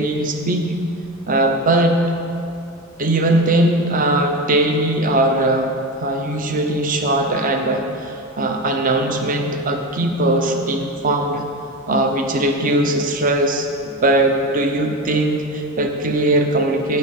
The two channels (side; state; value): both; normal; correlation 0.21